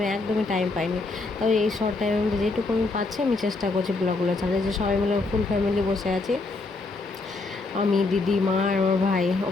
একদমই টাইম পাইনি। তবে এই শর্ট টাইমের মধ্যে যেটুকু আমি পাচ্ছি আমি চেষ্টা করছি ব্লগগুলো ছাড়তে। যে সবাই মিলে ফুল ফ্যামিলি বসে আছি, আমি, দিদি, মা আর আমার ভাই।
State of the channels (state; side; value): quieter; right; 3.6 dB